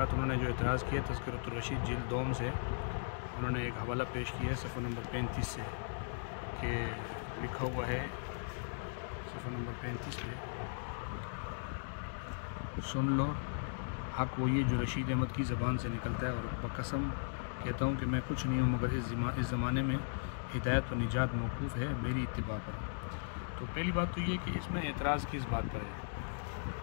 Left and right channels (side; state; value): right; silent; digital silence